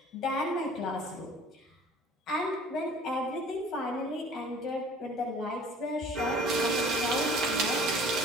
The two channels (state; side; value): normal; both; correlation 0.49